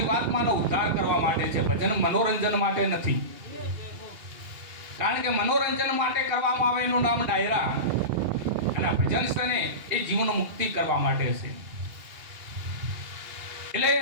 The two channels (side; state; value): left; late; 2.4 ms